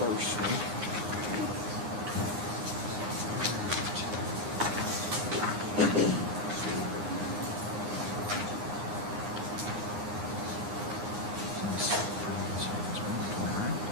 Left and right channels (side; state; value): left; late; 9.7 ms